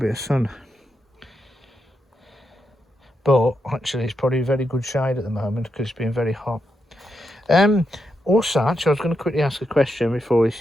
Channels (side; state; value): both; normal; correlation 0.84